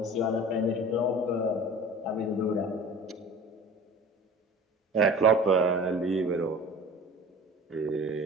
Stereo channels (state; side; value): normal; both; correlation 0.41